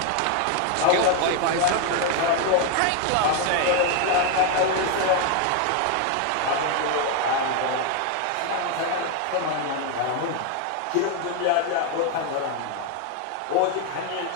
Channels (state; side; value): different; both; correlation 0.01